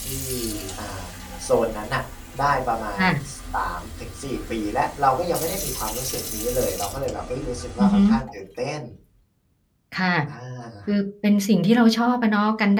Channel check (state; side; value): identical; both; correlation 1.00